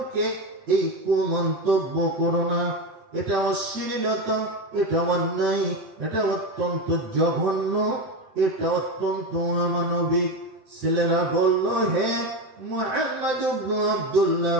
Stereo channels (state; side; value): late; left; 7.8 ms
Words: এই কুমন্তব্য করো না। এটা অশ্লীলতা, এটা অন্যায়, এটা অত্যন্ত জঘন্য, এটা অত্যন্ত অমানবিক। ছেলেরা বলল, হে মুহাম্মদ ইবনে আব্দুল্লাহ,